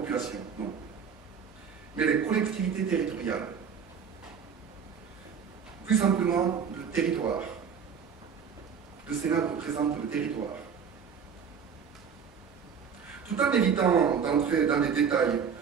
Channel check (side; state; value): left; quieter; 6.8 dB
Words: non, mais les collectivités territoriales. Plus simplement, le territoire. Le Sénat représente le territoire. Tout en évitant d'entrer dans les détails,